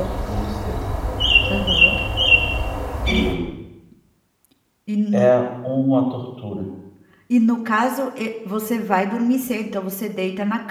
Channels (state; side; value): identical; both; correlation 1.00